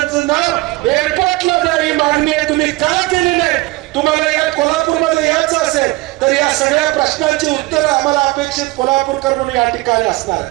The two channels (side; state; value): left; quieter; 21.0 dB